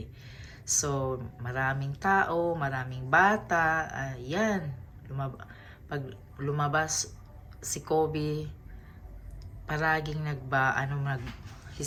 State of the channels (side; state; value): both; identical; correlation 1.00